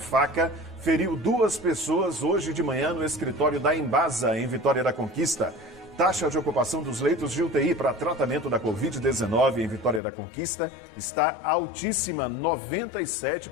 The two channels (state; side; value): drops out; right; at 10.0 s